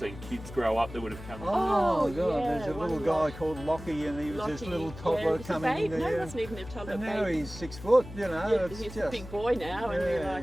kids grow up that would have come. Oh God, there's a little guy called Lockie, and he was this little toddler coming in there. No, he wasn't even a toddler. And now he's 6 foot, he's a big boy now, and we're like,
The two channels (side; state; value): left; noise; hum, 14 dB below the sound